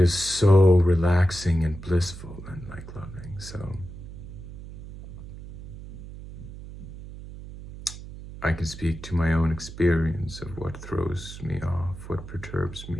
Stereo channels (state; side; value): noise; right; hum, 13 dB below the sound